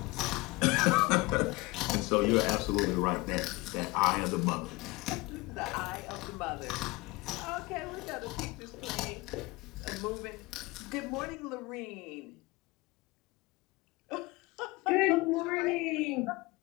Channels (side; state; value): right; quieter; 23.4 dB